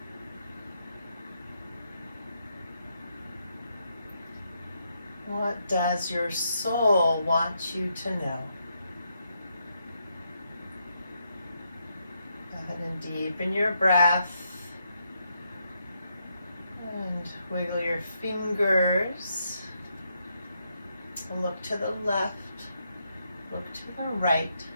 What does your soul want you to know? Go ahead and deepen your breath and wiggle your fingers. Look to the left, look to the right,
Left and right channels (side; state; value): both; inverted; correlation -0.79